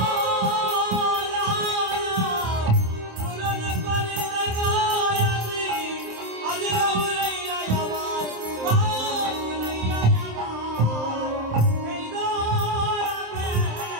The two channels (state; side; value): late; left; 27 ms